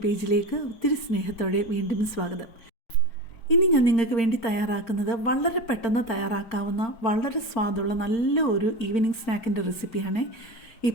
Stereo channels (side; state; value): right; late; 4.4 ms